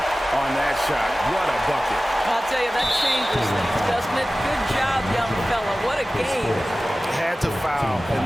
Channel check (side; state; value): both; normal; correlation 0.96